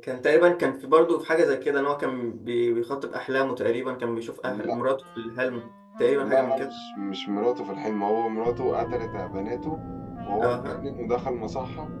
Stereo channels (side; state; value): both; identical; correlation 1.00